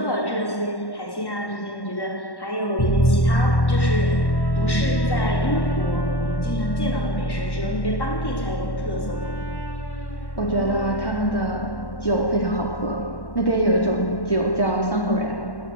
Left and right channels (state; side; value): late; right; 1.1 ms